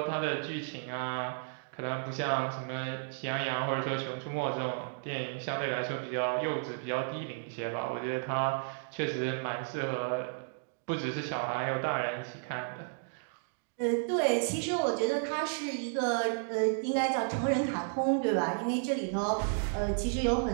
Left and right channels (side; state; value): left; silent; digital silence